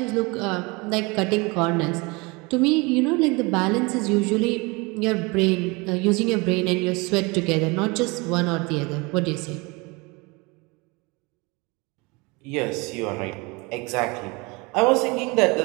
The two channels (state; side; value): quieter; left; 26.6 dB